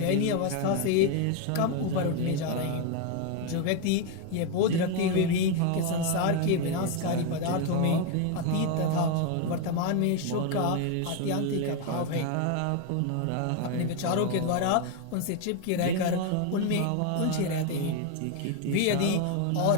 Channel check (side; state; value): both; different; correlation 0.01